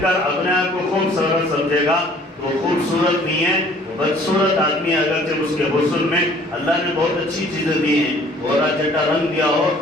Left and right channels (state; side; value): normal; both; correlation 0.55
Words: کر اپنے آپ کو خوبصورت سمجھے گا تو خوبصورت نہیں ہے، بدصورت آدمی، اگرچہ اس کے حسن میں اللہ نے بہت اچھی چیزیں دی ہیں، گورا چٹا رنگ دیا ہو،